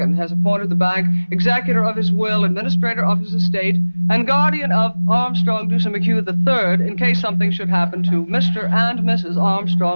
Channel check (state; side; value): inverted; both; correlation -1.00